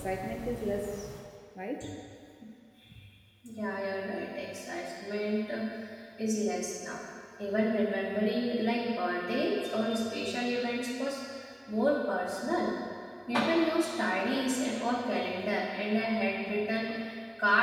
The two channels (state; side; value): identical; both; correlation 1.00